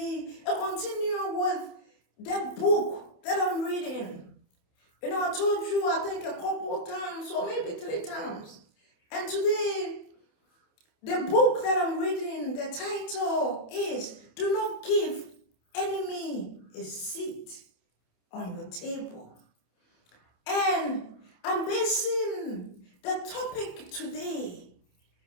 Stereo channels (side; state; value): right; late; 28 ms